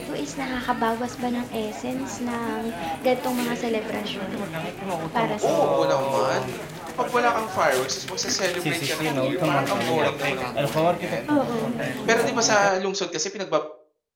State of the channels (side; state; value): both; identical; correlation 1.00